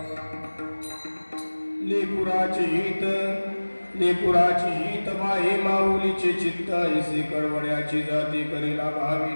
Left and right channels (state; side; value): inverted; both; correlation -1.00